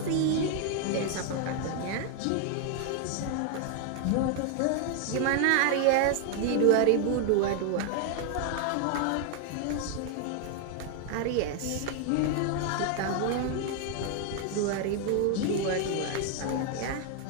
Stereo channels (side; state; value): both; different; correlation 0.00